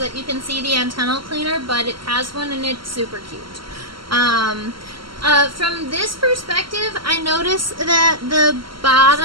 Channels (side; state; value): left; late; 0.73 ms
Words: that you can see the antennal cleaner, but it has one and it's super cute. From this perspective, I notice that the